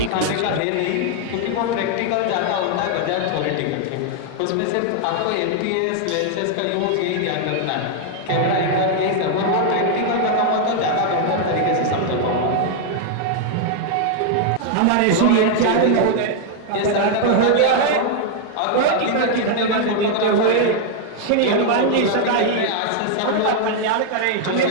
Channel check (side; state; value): both; different; correlation 0.00